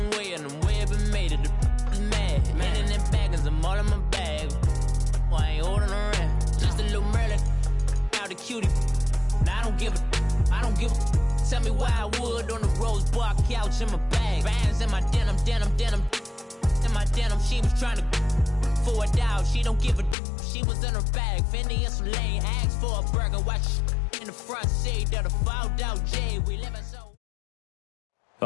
way, and the way it been made it. The is mad. Man in them baggins, I'm all in my bag. I ain't holding around. Just a little Merlin, out the cutie. Now I don't give a. Tell me why I would on the rose bar couch in my bag. Bands in my denim. In my denim, she was trying to for a doubt. She don't give a. She was in her bag. Fendi and some lane hags for a burger. Watch in the front seat of the fouled out J. We live in so.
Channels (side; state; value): right; drops out; at 20.2 s